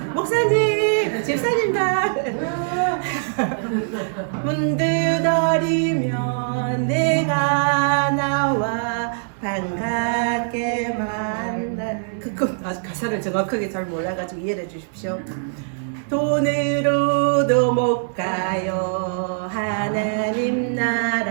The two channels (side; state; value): left; silent; 64 dB below the other